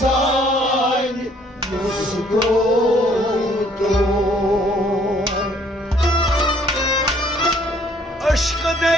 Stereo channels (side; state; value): both; normal; correlation 0.62